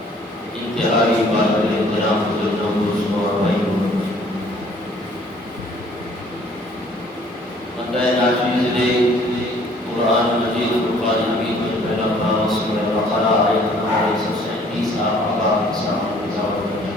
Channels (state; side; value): normal; both; correlation 0.57